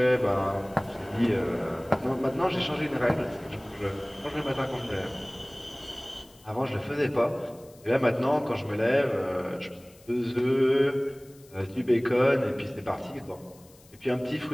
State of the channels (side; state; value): left; noise; hiss, 27 dB below the sound